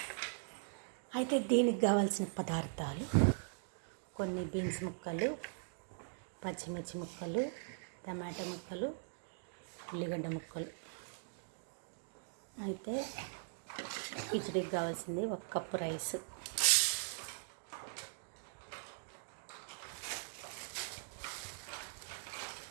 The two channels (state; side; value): silent; left; digital silence